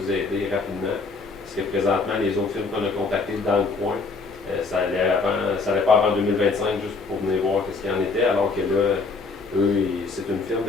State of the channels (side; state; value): right; quieter; 4.1 dB